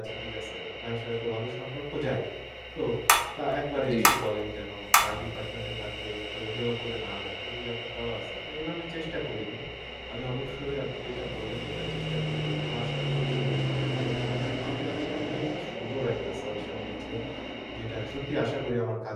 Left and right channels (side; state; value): both; identical; correlation 1.00